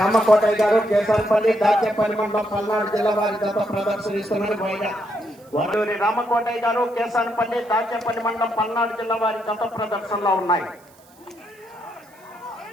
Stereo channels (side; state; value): right; noise; hiss, 29 dB below the sound